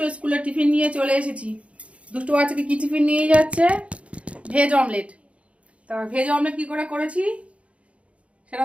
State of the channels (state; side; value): late; left; 0.063 ms